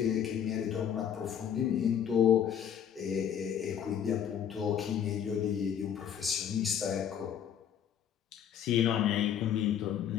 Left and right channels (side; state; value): right; quieter; 9.0 dB